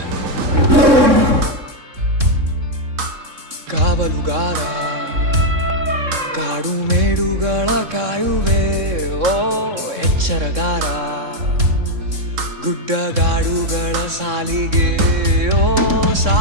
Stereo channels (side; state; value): left; late; 3.6 ms